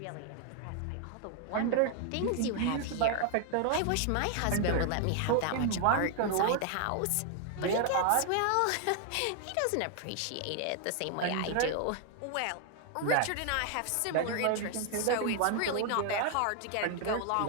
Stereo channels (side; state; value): both; different; correlation 0.00